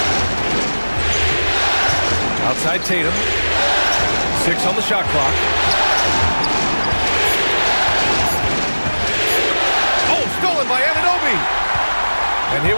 Outside Tatum. 6 on the shot clock. Oh, stolen by Anunoby. And here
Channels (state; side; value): inverted; both; correlation -1.00